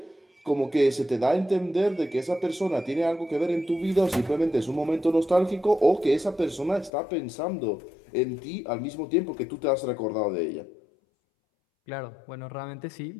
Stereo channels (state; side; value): drops out; right; at 6.9 s